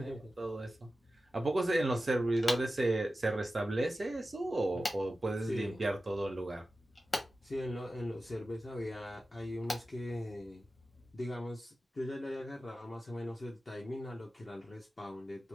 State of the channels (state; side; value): normal; both; correlation 0.94